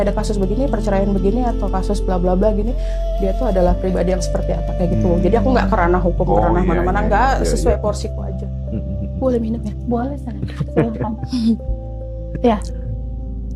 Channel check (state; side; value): identical; both; correlation 1.00